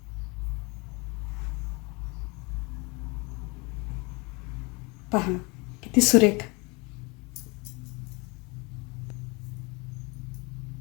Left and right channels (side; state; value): right; quieter; 27.8 dB